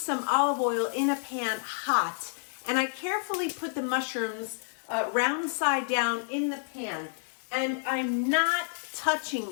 olive oil in a pan hot, and I carefully put the mushrooms round side down in the pan, and I'm not touching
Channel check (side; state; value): right; silent; digital silence